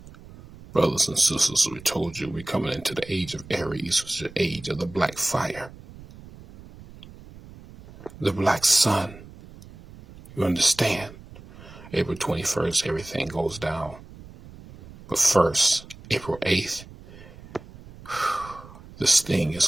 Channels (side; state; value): right; noise; rumble, 18 dB below the sound